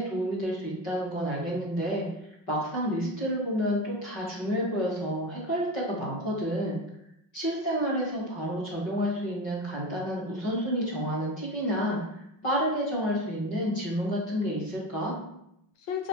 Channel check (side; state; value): right; late; 5.3 ms